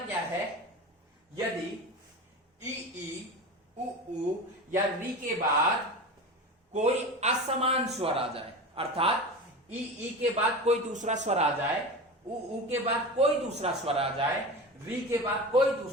है, यदि ई उ या री के बाद कोई असमान स्वर आ जाए, अर्थात ई के बाद कोई दूसरा स्वर आ जाए, उ के बाद कोई दूसरा स्वर आ जाए, री के बाद कोई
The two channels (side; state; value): both; normal; correlation 0.28